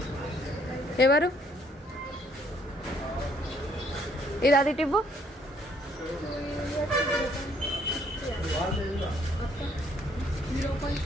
ఎవరు ఇది అది టివ్వు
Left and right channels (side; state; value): both; normal; correlation 0.66